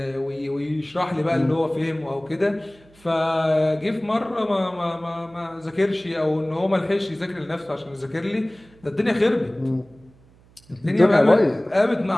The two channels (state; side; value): noise; right; hum, 28 dB below the sound